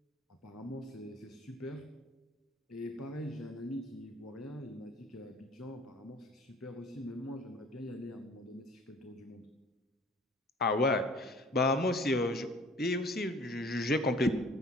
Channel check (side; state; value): both; normal; correlation 0.51